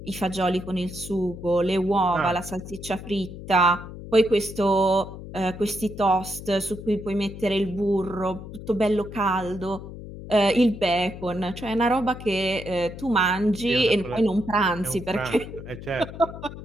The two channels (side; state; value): left; noise; hum, 12 dB below the sound